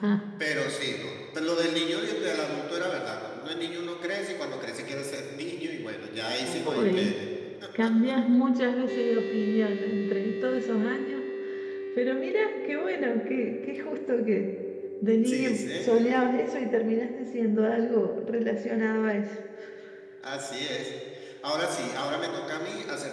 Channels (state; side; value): identical; both; correlation 1.00